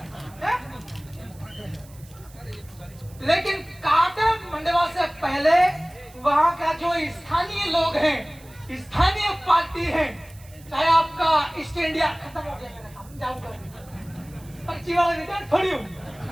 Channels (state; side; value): noise; right; hiss, 24 dB below the sound